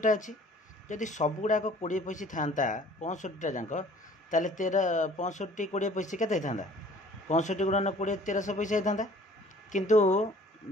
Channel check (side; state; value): both; normal; correlation 0.52